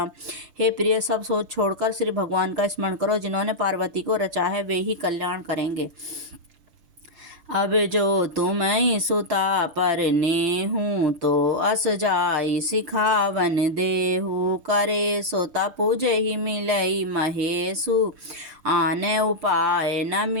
हे प्रिय, सब सोच छोड़कर श्री भगवान का स्मरण करो, जिन्होंने पार्वती को रचा है, वे ही कल्याण करेंगे। अब जो तुम सुता पर नेहू, तो अस जाई सिखावन देहू। करे सोता पूजहि मिलई महेशु, आने उपाय न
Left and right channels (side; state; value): left; late; 5.8 ms